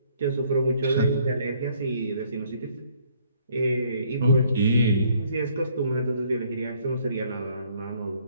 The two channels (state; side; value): inverted; both; correlation -0.64